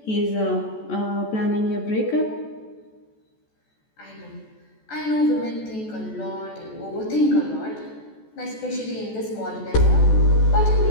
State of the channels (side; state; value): right; late; 14 ms